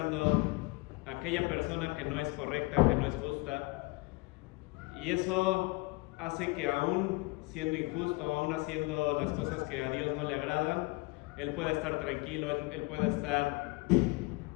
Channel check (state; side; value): quieter; right; 25.2 dB